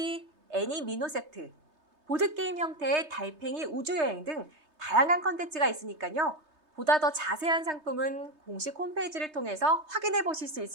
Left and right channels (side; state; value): left; late; 3.3 ms